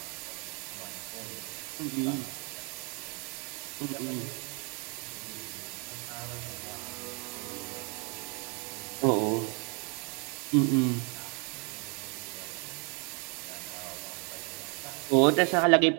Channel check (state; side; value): quieter; left; 34.7 dB